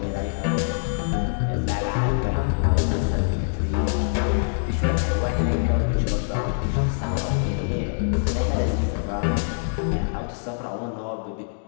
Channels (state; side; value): silent; right; digital silence